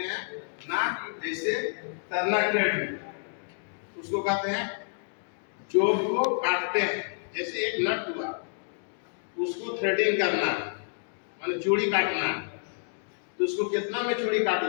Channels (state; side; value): silent; right; digital silence